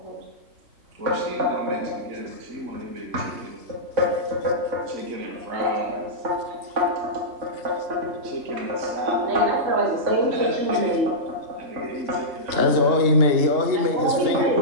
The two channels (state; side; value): late; left; 2.9 ms